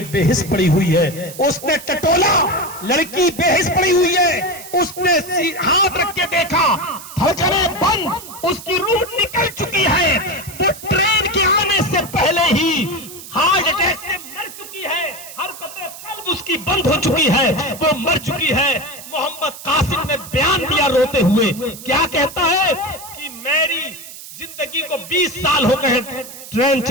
بے حس پڑی ہوئی ہے. اس نے ٹٹولا، لڑکی بے حس پڑی ہوئی ہے. اس نے ہاتھ رکھ کے دیکھا، دھڑکنیں بند، اس کی روح نکل چکی ہے. وہ ٹرین کے آنے سے پہلے ہی ہارٹ اٹیک سے مر چکی ہے، حرکتیں قلب اس کی بند ہو چکی ہے، وہ مر چکی ہے. محمد قاسم نے بیان دیا روتے ہوئے، کیا کہتا ہے کہ میری زندگی کو 20 سال ہو گئے ٹرین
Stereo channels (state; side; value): noise; right; hiss, 14 dB below the sound